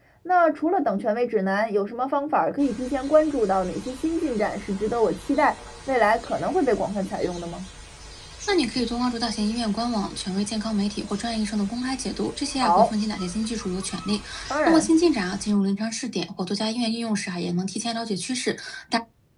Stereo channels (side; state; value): both; identical; correlation 1.00